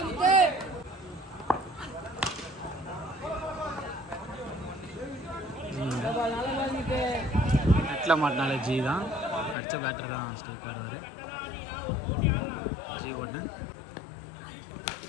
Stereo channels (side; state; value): right; drops out; at 9.6 s